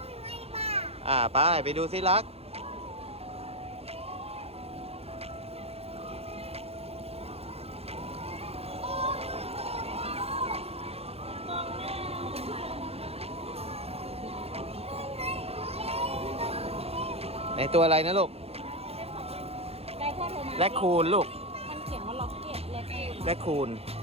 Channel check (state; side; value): late; left; 0.29 ms